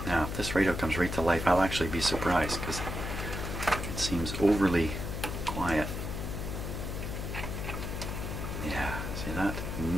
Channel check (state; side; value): noise; left; hum, 4 dB below the sound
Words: Now, if this radio comes right to life, I'll actually be surprised because it seems overly quiet. Yeah, see that?